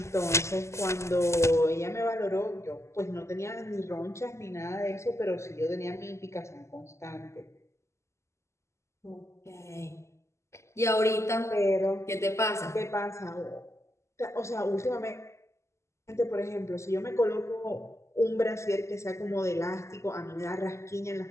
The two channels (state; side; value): late; right; 0.13 ms